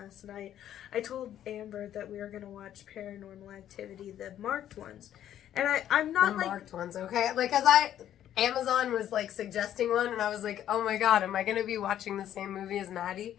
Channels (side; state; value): right; quieter; 11.1 dB